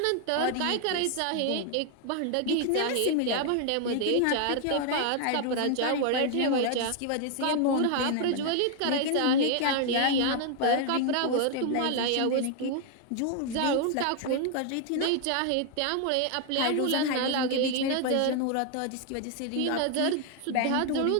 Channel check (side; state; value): both; different; correlation 0.00